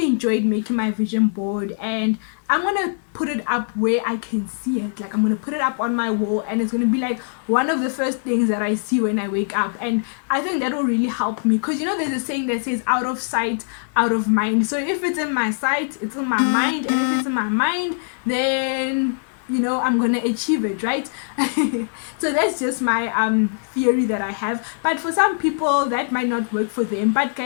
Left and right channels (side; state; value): right; silent; digital silence